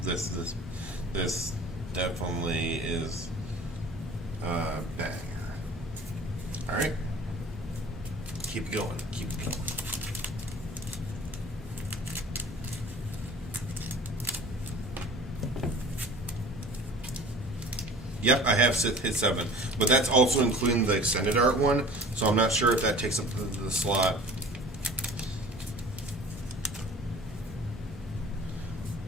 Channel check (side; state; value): both; normal; correlation 0.44